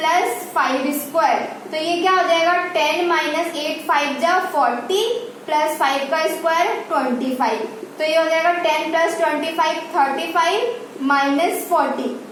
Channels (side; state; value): both; identical; correlation 1.00